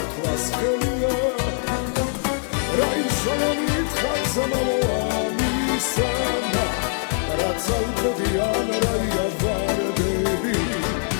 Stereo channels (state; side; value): silent; right; 64 dB below the other